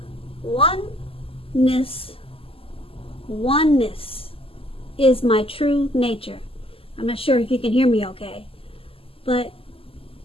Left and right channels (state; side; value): late; right; 0.27 ms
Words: Oneness is my true nature. I'm not sure if you can hear me okay, but